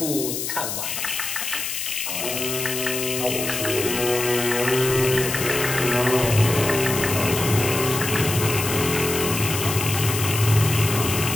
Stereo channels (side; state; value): left; noise; hiss, 4 dB below the sound